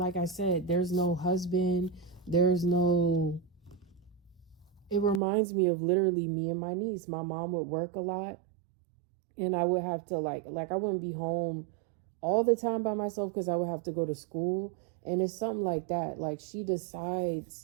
I said, there's no husband. There's no. It reminds me of literally me and my niece. My mom would work a lot, and I would have to like I wouldn't be home all the time by myself because I would have to go to school. And it's something like that. Like she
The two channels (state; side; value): drops out; left; at 5.2 s